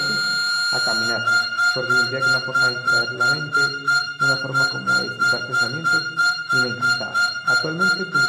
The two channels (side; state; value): both; identical; correlation 1.00